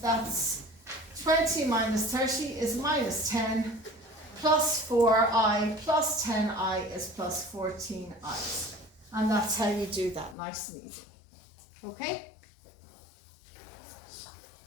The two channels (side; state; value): right; drops out; at 10.4 s